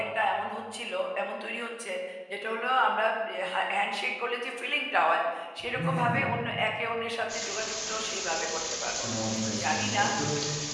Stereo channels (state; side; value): identical; both; correlation 1.00